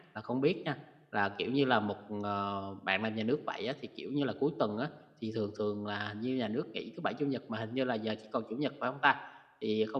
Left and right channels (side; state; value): both; identical; correlation 1.00